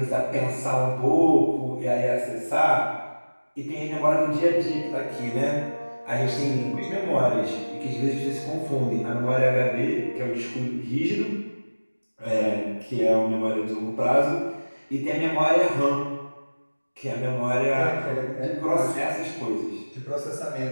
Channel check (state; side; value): inverted; both; correlation -1.00